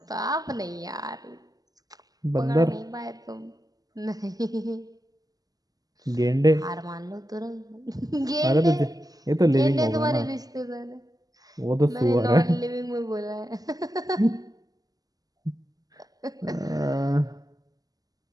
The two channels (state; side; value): late; left; 0.18 ms